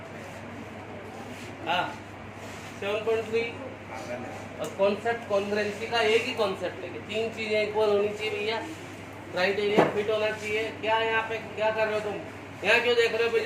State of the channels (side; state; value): both; identical; correlation 1.00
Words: हाँ 7.3 और कॉन्सेप्ट कॉन्ग्रुएंसी का एक ही कॉन्सेप्ट लेके तीन चीजें इक्वल होनी चाहिए भैया, क्राइटेरिया फिट होना चाहिए। क्या यहाँ पे क्या कर रहे हो तुम, यहाँ क्यों देख रहे हो